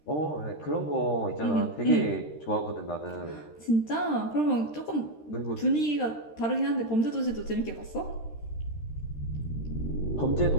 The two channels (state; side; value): late; right; 13 ms